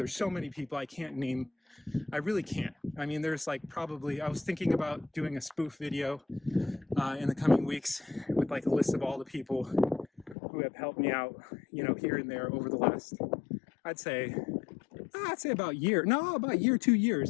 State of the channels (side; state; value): right; drops out; at 10.4 s